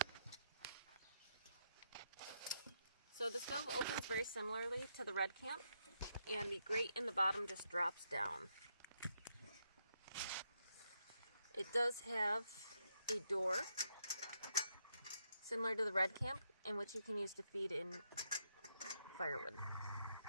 So the stove opens very similarly to the Red Camp, and the grate in the bottom just drops down. It does have a door, similar to the Red Camp, in which you can use to feed in firewood.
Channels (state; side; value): inverted; both; correlation -0.78